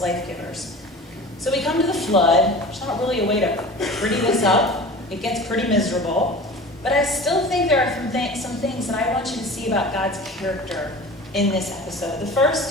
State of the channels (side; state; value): both; normal; correlation 0.38